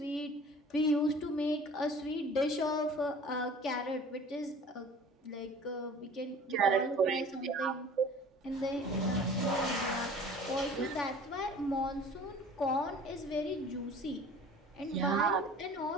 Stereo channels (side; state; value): both; normal; correlation 0.46